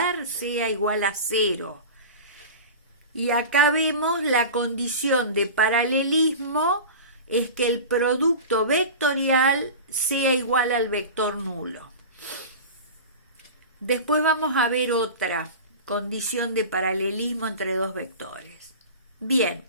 sea igual a 0? Y acá vemos la condición de paralelismo es que el producto vectorial sea igual al vector nulo. Después vamos a ver otra condición de paralelismo entre dos vectores. Bien,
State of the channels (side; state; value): both; inverted; correlation -0.32